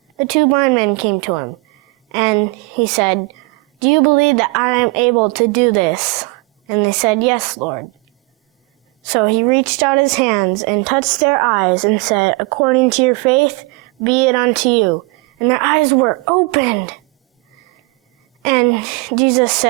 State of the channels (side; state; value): left; quieter; 26.7 dB